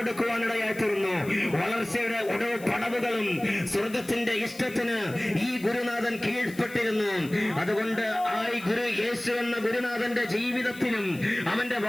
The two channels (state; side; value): noise; left; hiss, 19 dB below the sound